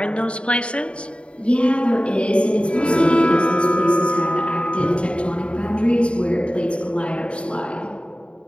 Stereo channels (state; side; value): late; right; 0.058 ms